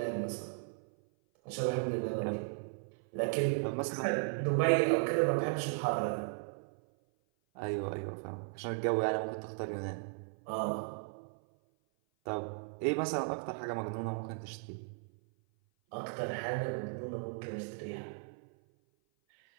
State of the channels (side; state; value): left; silent; 54 dB below the other